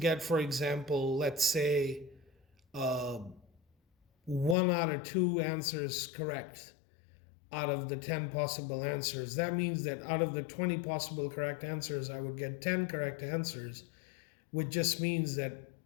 for example, let's say 1 out of 2 answers correct out of the 10 possible answers, that means that out of the 20 possible correct answers, I would get 10 correct answers, which just means that,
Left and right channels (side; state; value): right; drops out; at 4.5 s